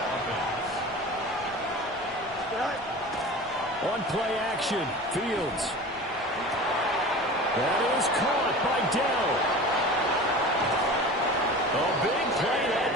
On play action, Fields. That is caught by Dell. A big play that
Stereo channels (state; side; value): noise; left; rumble, 25 dB below the sound